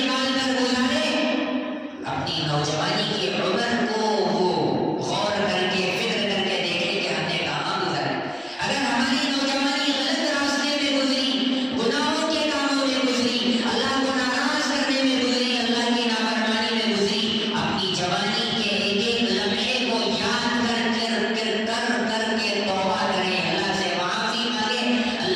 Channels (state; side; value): identical; both; correlation 1.00